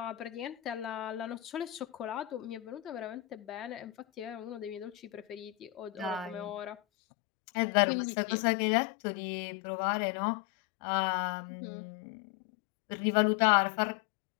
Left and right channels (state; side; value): drops out; right; at 6.8 s